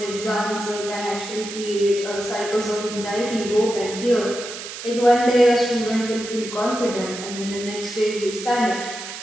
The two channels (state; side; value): noise; right; hiss, 10 dB below the sound